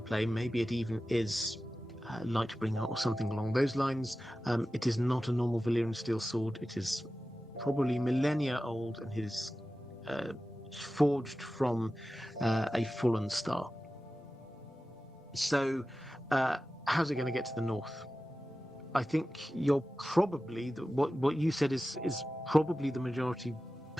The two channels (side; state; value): both; normal; correlation 0.94